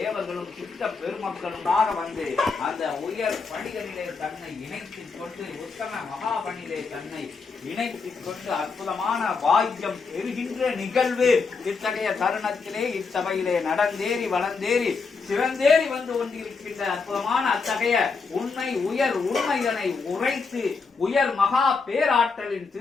சித்த பெருமக்களுமாக வந்து அந்த உயர் பணிகளிலே தன்னை இணைத்துக் கொண்டு உத்தம மகாபணியிலே தன்னை இணைத்துக் கொண்டு அற்புதமான பாக்கியம் பெறுகின்ற நிகழ்வு இத்தகைய தருணத்திலே இச்சபையிலே நடந்தேறி வளர்ந்தேறி சிறந்தேறி வந்து கொண்டிருக்கின்ற அற்புதமான அத்தகைய உண்மை உயர் உண்மைதனை உரைத்து உயர் மகா பேராற்றலின்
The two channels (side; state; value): right; quieter; 4.7 dB